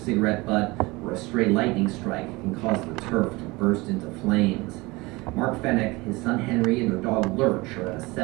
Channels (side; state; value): left; quieter; 23.1 dB